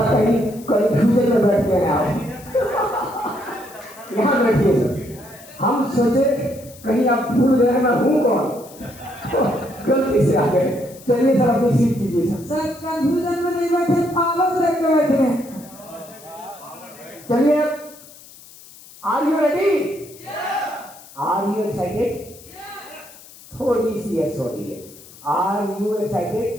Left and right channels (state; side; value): noise; left; hiss, 21 dB below the sound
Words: कहीं कंफ्यूजन में बैठ गए आप। यहाँ बैठिए सर। हम सोचे कहीं आप भूल गए मैं हूँ कौन, गलती से आ गए। चलिए सर अपनी सीट कीजिए सर। सर कंफ्यूजन में नहीं बैठे, पावर देख के बैठे हैं। चलिए, are you ready? Are you excited? थोड़ी सी यस हो रही है। Are you